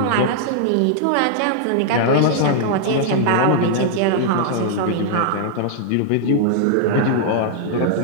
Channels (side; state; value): both; different; correlation -0.01